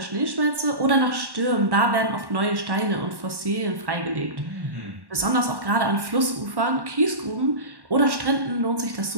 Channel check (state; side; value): late; left; 1.1 ms